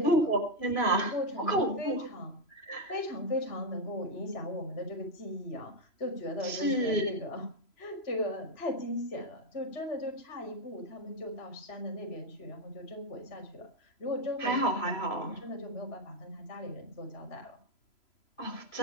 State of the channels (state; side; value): late; right; 3.0 ms